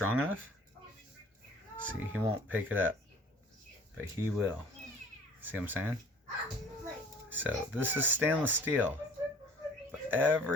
enough, see, he won't pick it up, but he will. See what I'm saying? So this is stainless steel, but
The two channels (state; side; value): normal; both; correlation 0.51